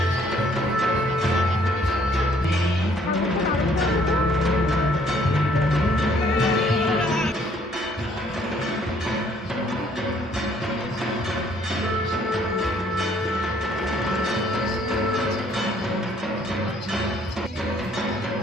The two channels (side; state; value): both; normal; correlation 0.63